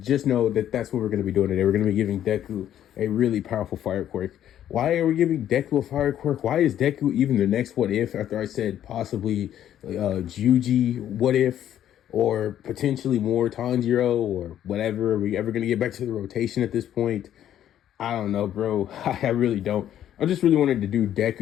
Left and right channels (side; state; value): right; quieter; 11.0 dB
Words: know that that's what we're going to be doing today. We're going to be giving Deku a really powerful fire quirk. Why are we giving Deku a fire quirk? Why is Deku even the next what if? After I said possibly Juji what if, or potentially more Tanjiro, or whatever. Are we ever going to get back to the rotation at this point? I don't know, bro. I really don't. I just really wanted to do